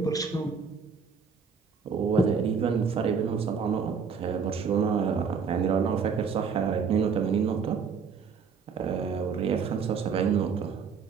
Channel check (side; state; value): left; quieter; 5.8 dB